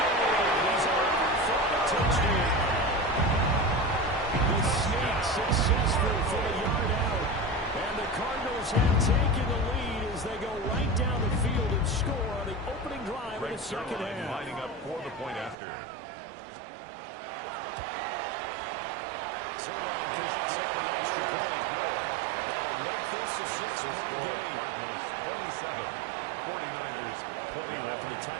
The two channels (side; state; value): left; drops out; at 15.6 s